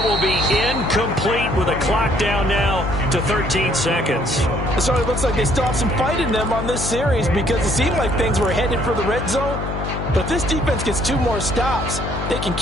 will be incomplete with a clock down now to 13 seconds. So it looks like they still have some fight in them on this series because it seemed like things were headed for the red zone. But if this defense gets 2 more stops, they can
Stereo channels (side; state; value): left; noise; hum, 5 dB below the sound